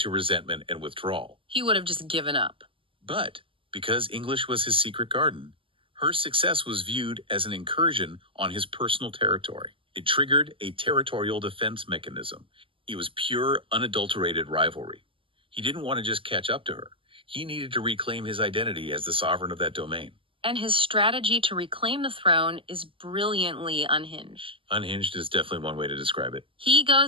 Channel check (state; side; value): late; left; 0.25 ms